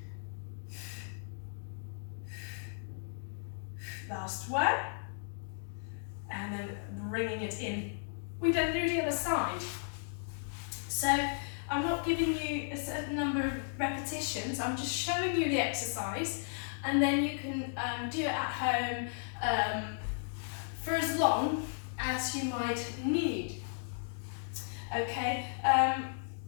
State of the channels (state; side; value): silent; right; digital silence